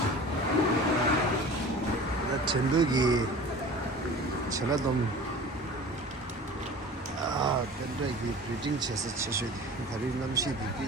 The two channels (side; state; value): both; normal; correlation 0.40